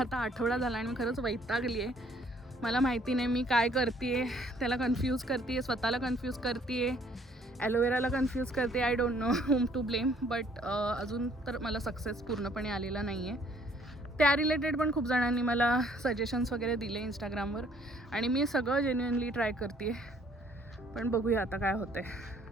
आठवडा झाला आणि मी खरंच वैतागली आहे. मला माहिती नाही मी काय करते आहे, त्याला कन्फ्यूज करते आहे, स्वतःला कन्फ्यूज करते आहे, ॲलोवेराला कन्फ्यूज करते. I don't know whom to blame, but अजून तर मला सक्सेस पूर्णपणे आलेला नाही आहे. त्या रिलेटेड पण खूप जणांनी मला सजेशन्स वगैरे दिले इंस्टाग्रामवर आणि मी सगळं जेन्युइनली ट्राय करते आहे, पण बघूया आता काय होतं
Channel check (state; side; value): normal; both; correlation 0.61